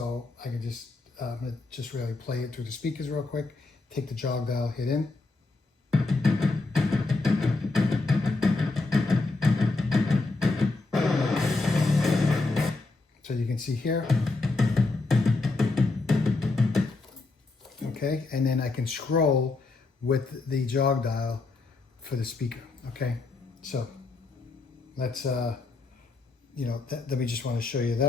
I can just really play it through the speakers real quick. Take the jog dial, hit in. So you can see here. Okay, and then I can scroll with the jog dial for the speaker. Okay, so let's let me just want to show you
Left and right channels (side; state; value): right; quieter; 3.5 dB